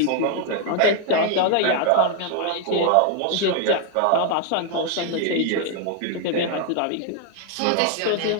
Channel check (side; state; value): both; different; correlation 0.00